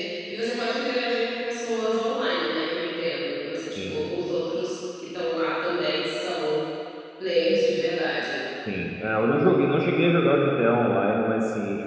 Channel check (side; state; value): both; identical; correlation 1.00